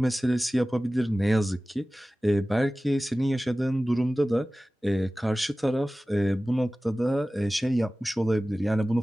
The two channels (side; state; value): both; normal; correlation 0.97